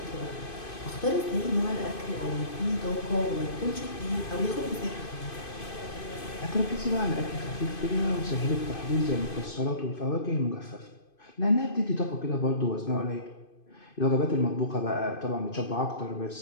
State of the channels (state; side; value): late; right; 2.5 ms